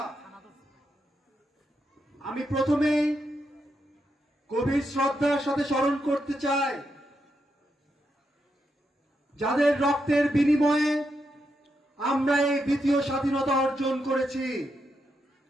আমি প্রথমেই গভীর শ্রদ্ধার সাথে স্মরণ করতে চাই যাদের রক্তের বিনিময়ে আমরা এই দ্বিতীয় স্বাধীনতা অর্জন করেছি।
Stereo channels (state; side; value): normal; both; correlation 0.83